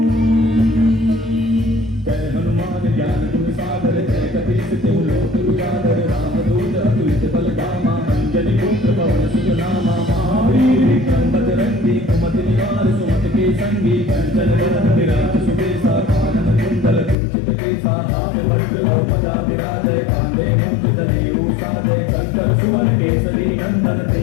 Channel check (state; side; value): drops out; right; at 17.2 s